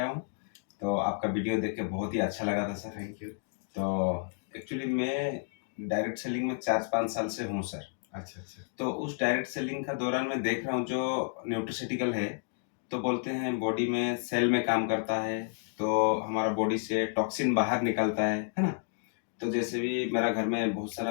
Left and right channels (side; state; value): right; silent; digital silence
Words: हूँ। तो आपका वीडियो देख के बहुत ही अच्छा लगा था सर। Thank you. तो एक्चुअली मैं डायरेक्ट सेलिंग में 4-5 साल से हूँ सर। अच्छा, अच्छा। तो उस डायरेक्ट सेलिंग का दौरान मैं देख रहा हूँ जो न्यूट्रास्यूटिकल है, तो बोलते हैं बॉडी में सेल में काम करता है, तो हमारा बॉडी से टॉक्सिन बाहर निकलता है ना? तो जैसे भी मेरा घर में बहुत